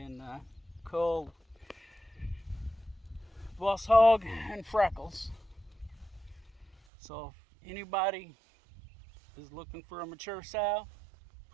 cull Boss Hog and Freckles. So if anybody is looking for a mature sow,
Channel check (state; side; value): drops out; left; at 6.8 s